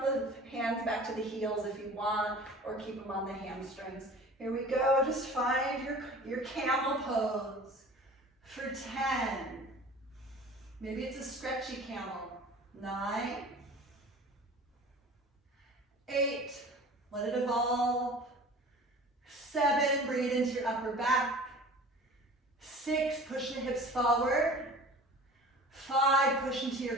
the hands back to the heels if you want, or keep them on the hamstrings. Here we go, just find your camel pose for 10. Maybe it's a stretchy camel. 9. 8, let it evolve. 7, bring it into your upper back. 6, push the hips forward. 5, push into your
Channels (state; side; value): normal; both; correlation 0.42